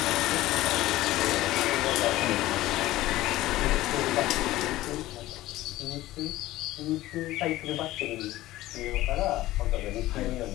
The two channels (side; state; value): right; quieter; 16.4 dB